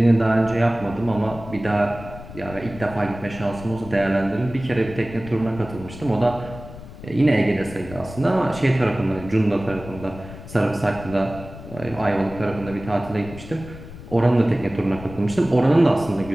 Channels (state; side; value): noise; left; rumble, 14 dB below the sound